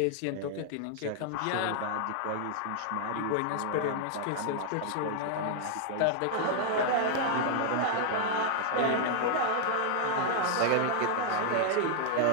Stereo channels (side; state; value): both; different; correlation -0.01